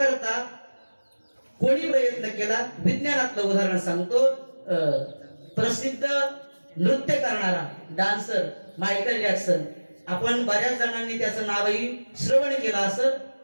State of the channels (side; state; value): both; inverted; correlation -1.00